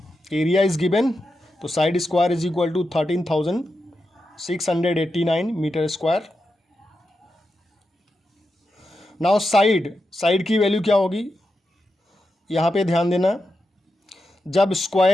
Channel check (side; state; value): both; normal; correlation 0.88